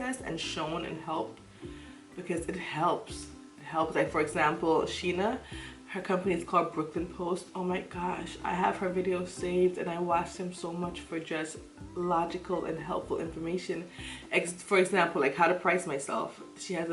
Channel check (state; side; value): identical; both; correlation 1.00